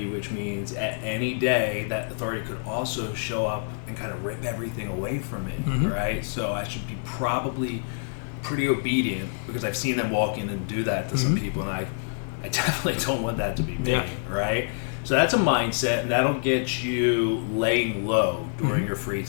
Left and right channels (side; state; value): right; silent; digital silence